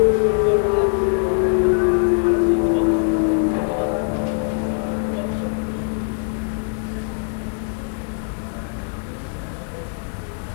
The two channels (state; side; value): silent; right; 65 dB below the other